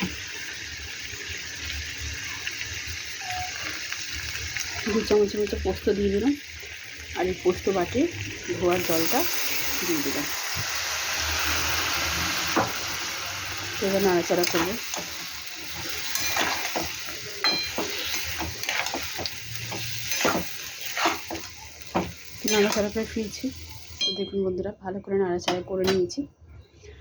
দু চামচের মতো পোস্ত দিয়ে দিলাম, আর এই পোস্ত বাটি ধোয়ার জলটা দিয়ে দিলাম। এবার নাড়াচাড়া করবো। নাড়াচাড়া করে ফিরছি। তো দেখুন বন্ধুরা ভালো করে নাড়াচাড়া করে নিয়েছি,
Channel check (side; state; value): both; identical; correlation 1.00